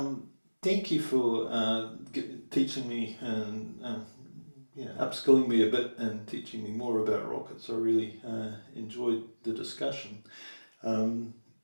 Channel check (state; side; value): inverted; both; correlation -1.00